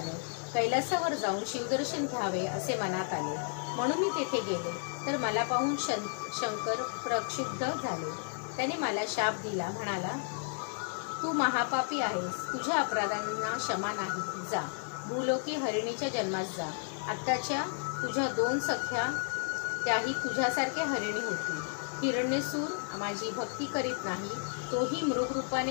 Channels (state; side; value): silent; right; 56 dB below the other